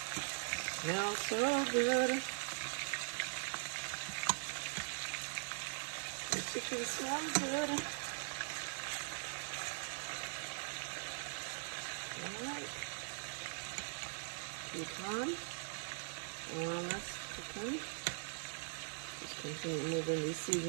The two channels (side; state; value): left; silent; digital silence